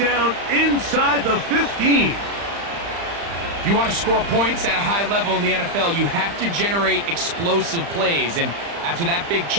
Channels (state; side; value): late; left; 35 ms